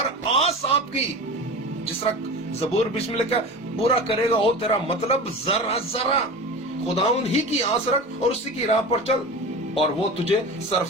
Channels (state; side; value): normal; both; correlation 0.31